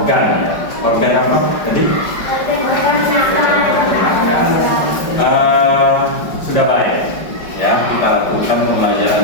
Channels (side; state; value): right; late; 5.1 ms